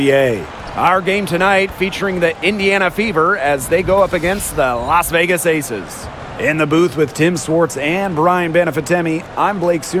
Our game tonight featuring the Indiana Fever as they go up against the Las Vegas Aces. In the booth with Tim Swartz and Brian Benefitemi, I'm Blake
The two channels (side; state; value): both; identical; correlation 1.00